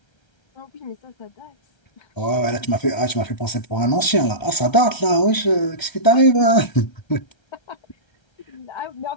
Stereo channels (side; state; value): right; late; 1.3 ms